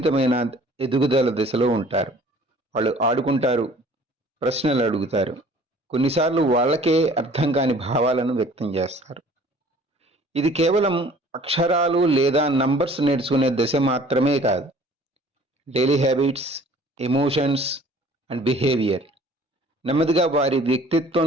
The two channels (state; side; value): normal; both; correlation 0.51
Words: ఎదుగుదల దశలో ఉంటారు. వాళ్ళు ఆడుకుంటారు, ప్రశ్నలు అడుగుతారు, కొన్నిసార్లు వాళ్ళకే అర్థం కాని భావాలను వ్యక్తం చేస్తారు. ఇది కేవలం అక్షరాలు లేదా నంబర్స్ నేర్చుకునే దశ మాత్రమే కాదు. Daily habits, emotions and behaviour నెమ్మదిగా వారి